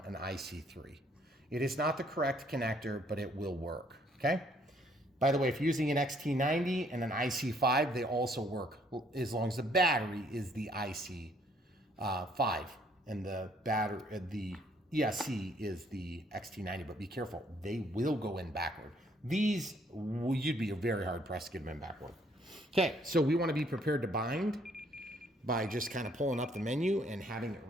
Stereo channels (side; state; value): both; normal; correlation 0.65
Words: IC3. It is not the correct connector, but it will work, okay? By the way, if you're using an XT90 and an IC5, they also work as long as the battery is the IC5 and the ESC is the XT90, but be careful, they will go in backward. These, you'd be very hard pressed to get them in backward. Okay, so we want to be prepared to bind by just kind of pulling up the menu and having it